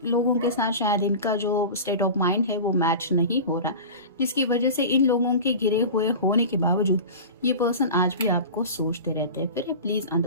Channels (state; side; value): inverted; both; correlation -0.32